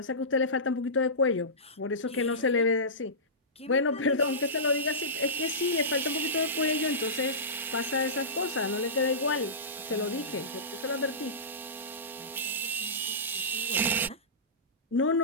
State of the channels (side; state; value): both; normal; correlation -0.20